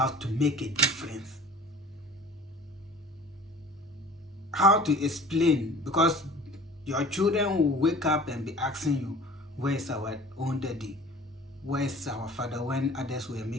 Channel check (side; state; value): both; normal; correlation 0.45